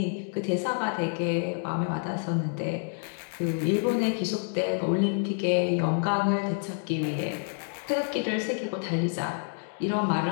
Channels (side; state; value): right; silent; 59 dB below the other